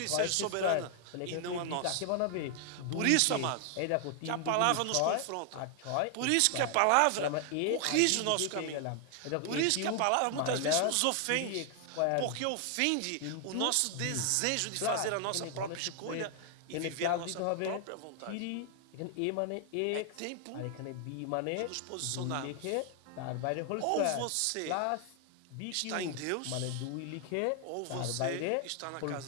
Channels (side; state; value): both; different; correlation 0.00